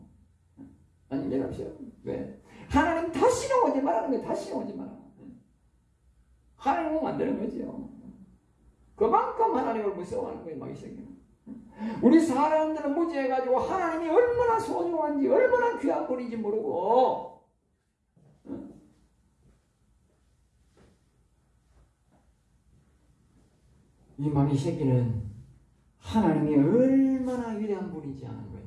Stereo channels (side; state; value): both; identical; correlation 1.00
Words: 완전 없애버린다. 왜? 하나님 다시는 오지 말라는 거예요. 다시는 오지 마라. 하나님은 만드는 거죠. 그만큼 하나님을 무서워하는 거예요. 막 이 새끼는. 우리 사람들은 무지해가지고 하나님이 얼마나 소중한지, 얼마나 귀한 분인지 모르고, 이 마귀 새끼는 하나님이 얼마나 위대한 분인지 아는 거예요.